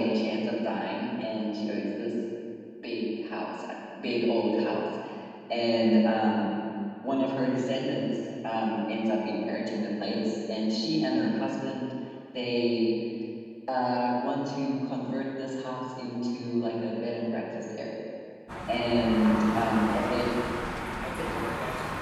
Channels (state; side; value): identical; both; correlation 1.00